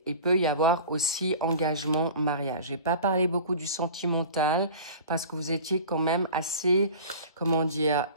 il peut y avoir aussi engagement, mariage. J'ai pas parlé beaucoup du sentimental parce que vous étiez quand même assez, comment dire,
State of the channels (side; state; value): both; inverted; correlation -0.39